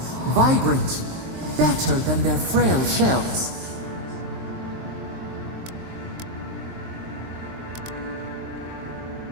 vibrant. better than their frail shells.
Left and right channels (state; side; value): late; left; 23 ms